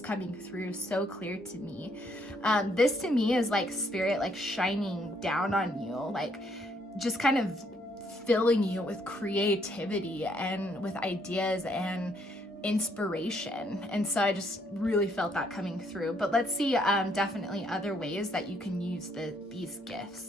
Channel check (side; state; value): both; normal; correlation 0.70